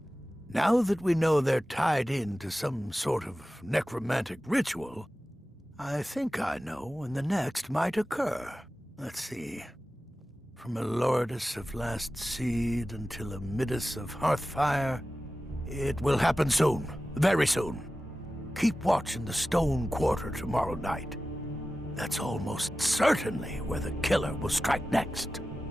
Now that we know they're tied in to some sort of necromantic ritual, I think I know when the next might occur. Let's see. From a Lourdes of Last Seed until a Midas of Hearthfire, it will happen soon. Very soon. Keep watch in the Stone Quarter tomorrow night. That's almost certainly where the killer will strike next.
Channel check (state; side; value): normal; both; correlation 0.95